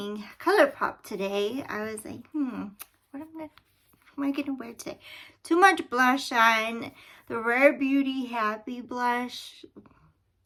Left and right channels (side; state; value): both; identical; correlation 1.00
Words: Colourpop today. I was like, what am I gonna wear today? Too much blush on. The Rare Beauty Happy blush